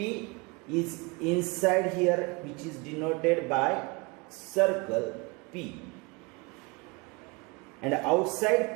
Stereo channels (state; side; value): quieter; left; 27.5 dB